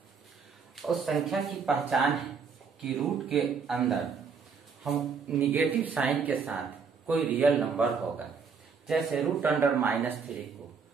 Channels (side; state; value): left; quieter; 5.7 dB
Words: उस संख्या की पहचान है कि रूट के अंदर हम निगेटिव साइन के साथ कोई रियल नंबर होगा। जैसे √3 को